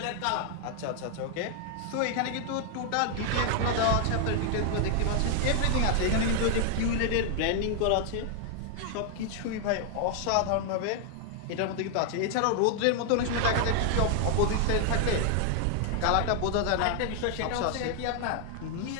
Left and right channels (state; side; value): different; both; correlation 0.00